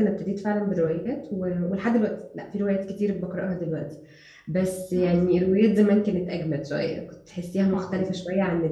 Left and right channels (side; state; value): both; identical; correlation 1.00